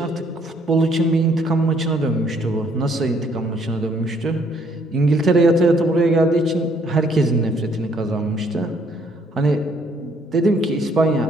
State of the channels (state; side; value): normal; both; correlation 0.66